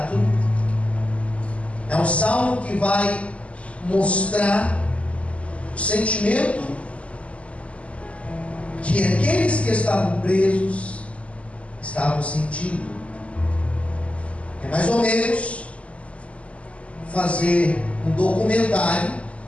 É um salmo que vai mostrar o sentimento que aqueles que estavam presos estavam sentindo. É mais ou menos fazer um documentário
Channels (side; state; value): right; late; 0.062 ms